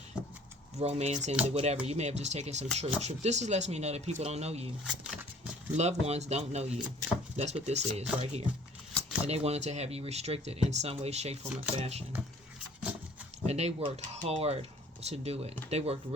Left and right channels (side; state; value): both; normal; correlation 0.53